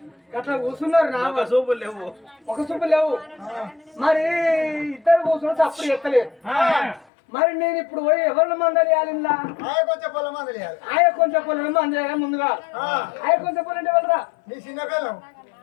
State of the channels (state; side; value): drops out; right; at 7.1 s